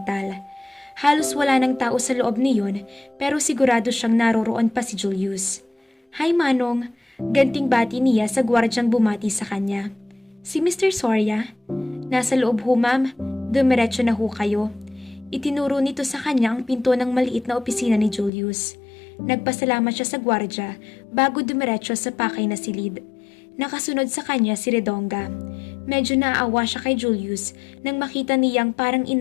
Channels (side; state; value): right; drops out; at 18.3 s